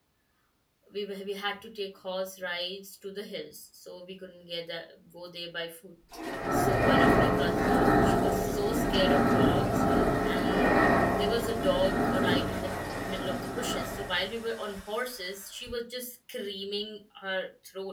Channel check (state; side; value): identical; both; correlation 1.00